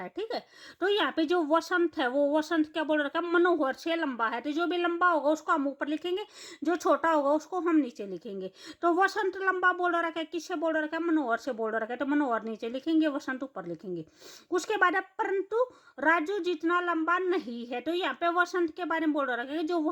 ठीक है, तो यहाँ पे जो वसंत है वो वसंत क्या बोल रखा है? मनोहर से लंबा है। तो जो भी लंबा होगा उसको हम ऊपर लिखेंगे, जो छोटा होगा उसको हम नीचे लिखेंगे। तो वसंत लंबा बोल रखा है, किससे बोल रखा है? मनोहर से बोल रखा है, तो मनोहर नीचे लिखेंगे, वसंत ऊपर लिखेंगे। उसके बाद परंतु राजू जितना लंबा नहीं है। तो यहाँ पे वसंत के बारे में बोल रखा है, जो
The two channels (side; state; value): both; identical; correlation 1.00